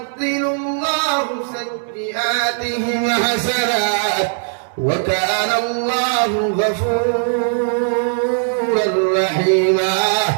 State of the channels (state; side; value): silent; left; digital silence